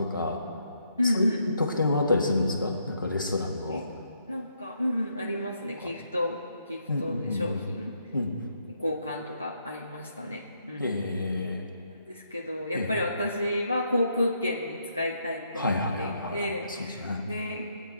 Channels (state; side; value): inverted; both; correlation -0.75